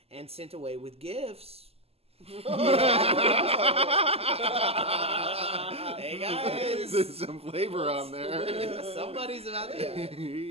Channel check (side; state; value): left; late; 0.29 ms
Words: and sent away with gifts. Hey guys, There's some flavor on there. somebody's about to.